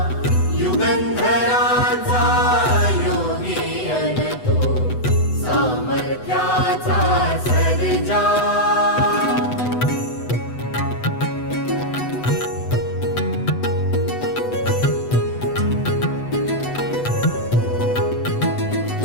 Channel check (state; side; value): late; right; 8.0 ms